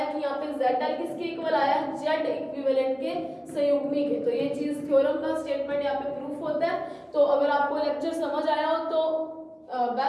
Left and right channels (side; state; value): both; identical; correlation 1.00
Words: कि यहाँ पे ZL किसके इक्वल आया, Z इक्विवेलेंट के संयुग्मी के। तो ये चीज थ्योरम का स्टेटमेंट यहाँ पे प्रूफ होता है। तो अगर आपको लेक्चर समझ आया हो तो